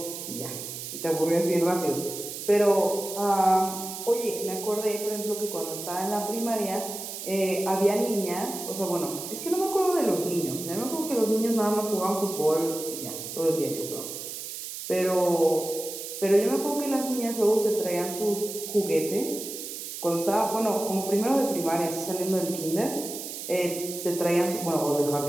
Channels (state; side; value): noise; right; hiss, 8 dB below the sound